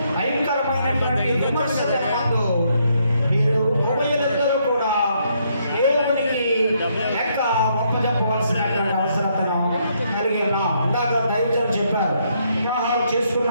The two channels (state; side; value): inverted; both; correlation -0.73